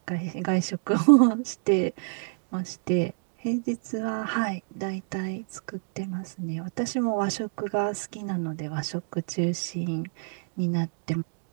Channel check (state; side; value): silent; left; digital silence